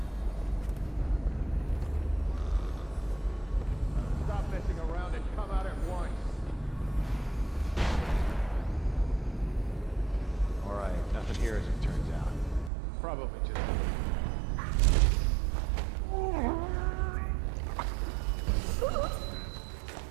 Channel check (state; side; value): drops out; left; at 12.7 s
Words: Stop messing around and come out at once. Alright, nothing here as it turns out. Probably just...